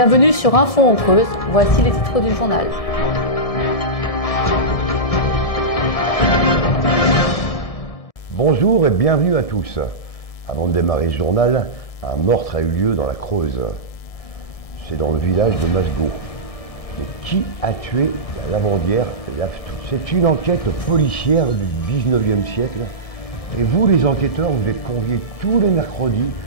sur Info en Creuse. Voici les titres du journal. Bonjour et bienvenue à tous. Avant de démarrer ce journal, un meurtre a eu lieu dans la Creuse. C'est dans le village de Masgo. Mais qui a tué la lavandière Lave-Tout? C'est une enquête policière du 19e siècle. Et vous, les enquêteurs, vous êtes conviés tous les mercredis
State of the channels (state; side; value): late; right; 1.7 ms